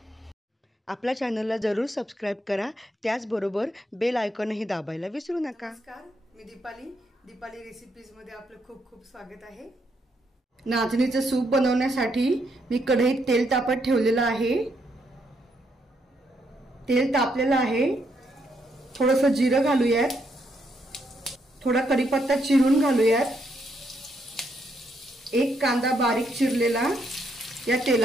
आपल्या चॅनलला जरूर सबस्क्राइब करा, त्याचबरोबर बेल आयकॉनही दाबायला विसरू नका। नमस्कार, मी दीपाली रेसिपीज मध्ये आपलं खूप खूप स्वागत आहे। नाचणीचे सूप बनवण्यासाठी मी कढईत तेल तापत ठेवलेलं आहे। तेल तापलेलं आहे। थोडंसं जिरं घालूयात, थोडा कढीपत्ता चिरून घालूयात। एक कांदा बारीक चिरलेला या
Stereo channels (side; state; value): both; normal; correlation 0.76